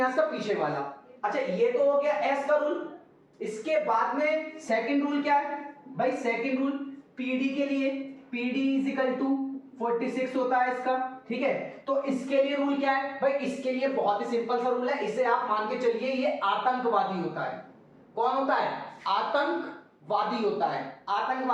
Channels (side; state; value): both; identical; correlation 1.00